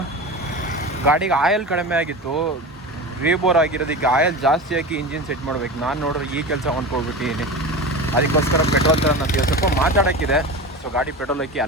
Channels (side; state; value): both; normal; correlation 0.28